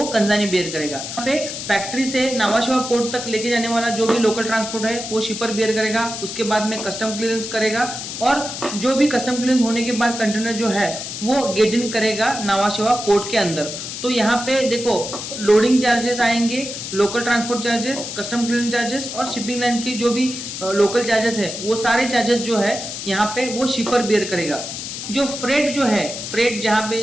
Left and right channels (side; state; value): left; noise; hiss, 7 dB below the sound